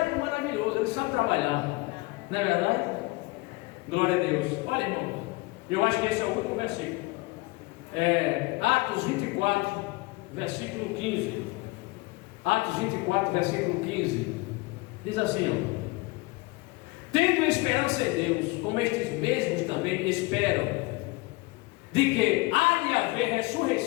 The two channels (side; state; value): right; quieter; 23.9 dB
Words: maravilhoso, ele sabe trabalhar. Não é verdade? Glória a Deus. Olha, irmão, eu acho que esse é o último versículo. Atos 24, versículo 15. Atos 24, versículo 15. Diz assim, ó: tendo esperança em Deus, como estes mesmos também esperam, de que há de haver